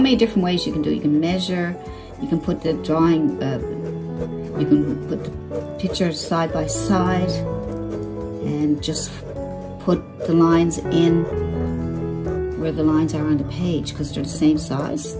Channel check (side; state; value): both; identical; correlation 1.00